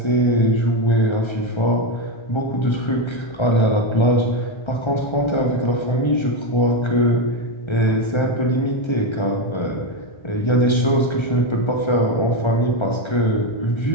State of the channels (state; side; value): late; right; 1.3 ms